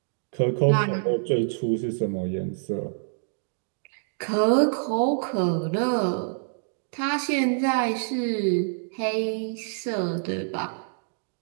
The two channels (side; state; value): left; silent; digital silence